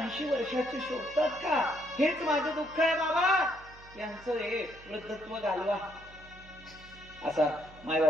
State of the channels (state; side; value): noise; right; hum, 21 dB below the sound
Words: वर्षाची शोधतात का? हेच माझं दुःख आहे बाबा. यांचं हे वृद्धत्व घालवा. असा